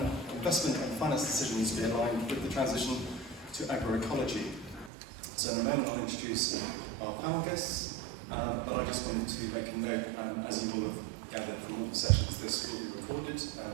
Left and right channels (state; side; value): drops out; left; at 4.9 s